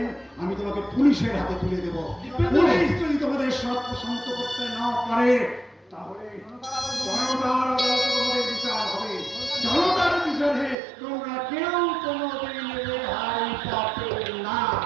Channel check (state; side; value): drops out; left; at 10.8 s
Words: আমি তোমাকে পুলিশের হাতে তুলে দেব। পুলিশ যদি তোমাদের সর্বসন্ত করতে না পারে, তাহলে জনতার আদালতে তোমাদের বিচার হবে। জনতার বিচারে তোমরা কেউ কোনোদিন রেহাই পাবে না।